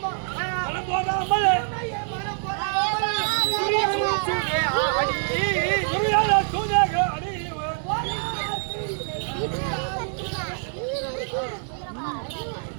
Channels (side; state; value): left; silent; 62 dB below the other